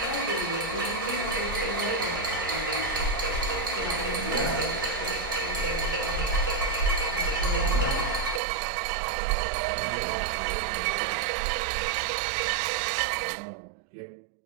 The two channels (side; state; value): left; drops out; at 8.4 s